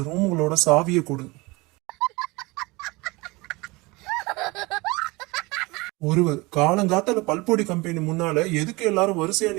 ரூம்களோட சாவியை கொடு. ஒருவர், காலங்காத்தால பல்பொடி கம்பெனி முன்னால எதுக்கு எல்லாரும் வரிசையா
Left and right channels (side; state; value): left; quieter; 24.0 dB